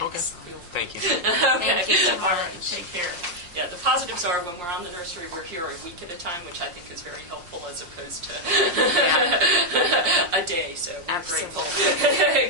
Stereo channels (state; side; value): late; left; 5.6 ms